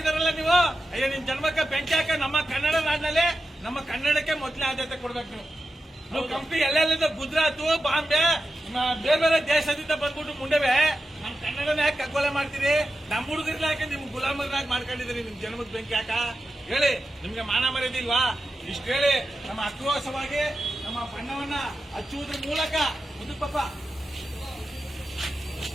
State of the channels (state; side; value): normal; both; correlation 0.91